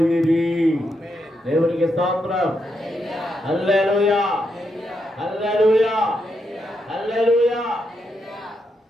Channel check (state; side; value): normal; both; correlation 0.81